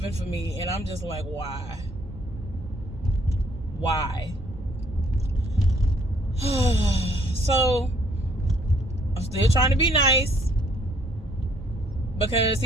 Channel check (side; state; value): both; normal; correlation 0.64